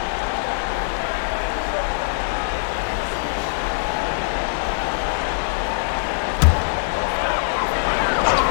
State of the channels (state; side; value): silent; right; digital silence